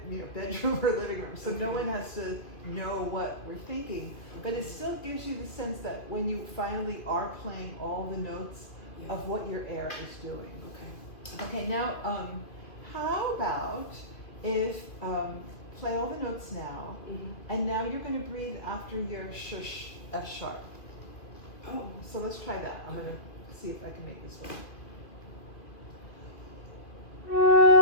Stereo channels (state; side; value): late; right; 2.5 ms